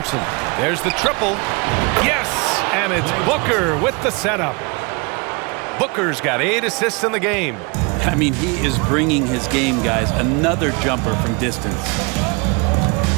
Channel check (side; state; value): left; quieter; 30.1 dB